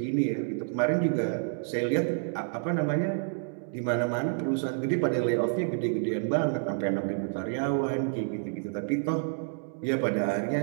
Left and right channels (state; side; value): silent; left; digital silence